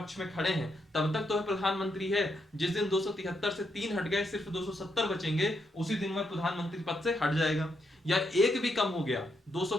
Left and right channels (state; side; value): normal; both; correlation 0.80